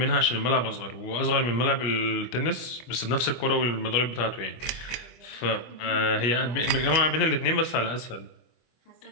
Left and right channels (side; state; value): right; late; 25 ms